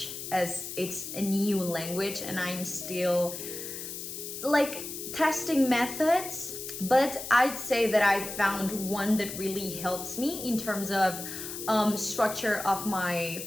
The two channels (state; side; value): noise; left; hiss, 8 dB below the sound